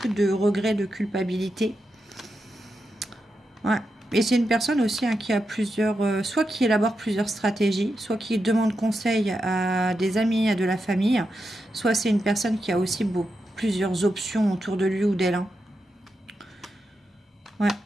de regrets, de culpabilité. Ouais. Et c'est une personne aussi qui a plusieurs... soit qui élabore plusieurs stratégies, soit qui demande conseil à des amis, à de la famille. Soit c'est une personne qui a aussi plusieurs options autour de lui ou d'elle. Hein. Ouais.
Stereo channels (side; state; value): both; normal; correlation 0.87